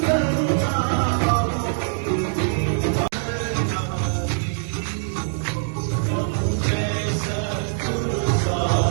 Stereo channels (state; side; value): silent; left; digital silence